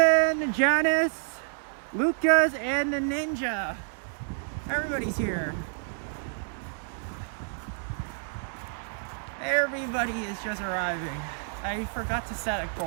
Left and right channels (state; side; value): silent; left; 59 dB below the other